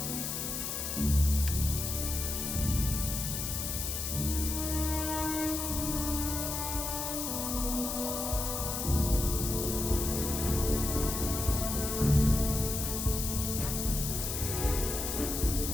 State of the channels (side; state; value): left; noise; hiss, 3 dB below the sound